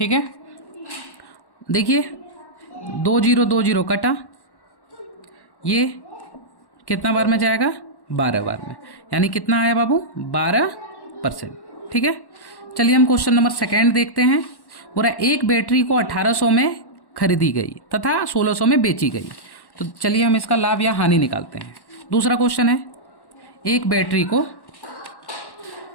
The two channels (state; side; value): late; right; 1.1 ms